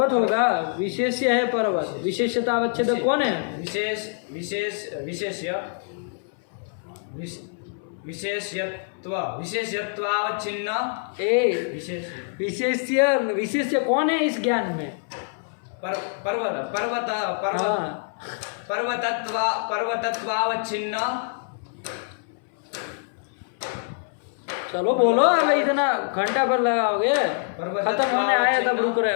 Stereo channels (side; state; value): right; silent; 62 dB below the other